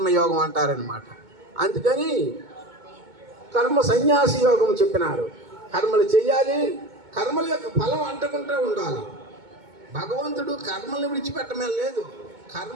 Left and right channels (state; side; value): late; left; 2.2 ms